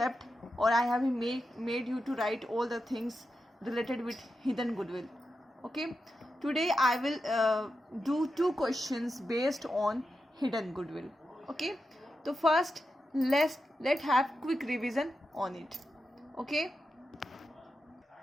or I have made you to write all the things related with hidden goodwill. Okay, today I will do 2 questions based on hidden goodwill. Okay, so first let's have quick revision on it. Okay,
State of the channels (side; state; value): both; normal; correlation 0.88